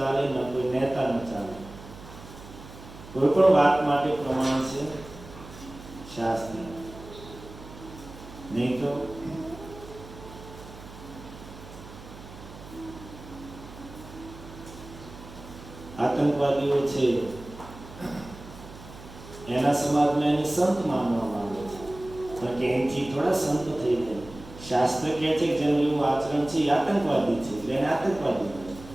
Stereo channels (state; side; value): noise; right; hum, 16 dB below the sound